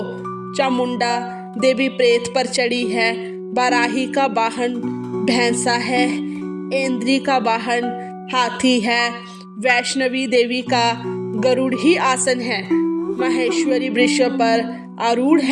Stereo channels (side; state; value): both; identical; correlation 1.00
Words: चामुंडा देवी प्रेत पर चढ़ी है। बाराही का वाहन भैंसा है। इंद्री का वाहन हाथी है। वैष्णवी देवी का गरुड़ ही आसन है। महेश्वरी वृक्ष पर आरूढ़